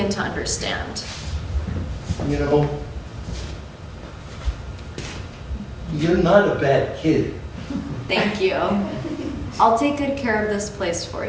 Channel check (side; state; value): both; identical; correlation 1.00